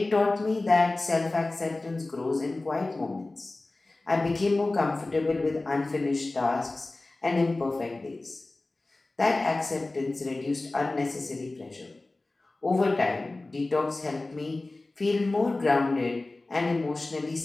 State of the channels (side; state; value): right; quieter; 3.0 dB